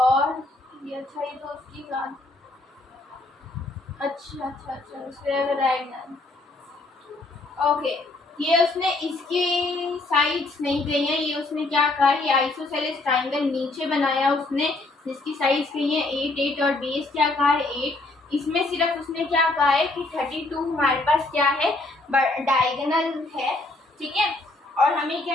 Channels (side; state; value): right; quieter; 3.0 dB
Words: ये अच्छा, ये तो उसकी बात, अच्छा स्क्वायर डायगोनल, ओके। ये उसने इसकी साइड्स नहीं कही है, ये उसने क्या कहा, ये आइसोसेलेस ट्राइंगल नीचे बनाया उसने, जिसकी साइड्स कही है 8 8 और बेस क्या कहा है 8। इसमें सिर्फ उसने क्या कहा है कि 32 हमारे पास क्या है डायगोनल है, ठीक है। और हमें